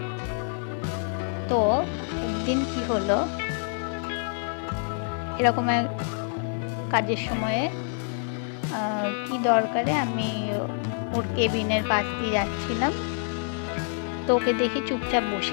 তো একদিন কি হলো, এরকম এক কাজের সময়ে কি দরকারে আমি ওর কেবিনের পাশ দিয়ে যাচ্ছিলাম, তো ওকে দেখি চুপচাপ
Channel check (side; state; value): right; silent; digital silence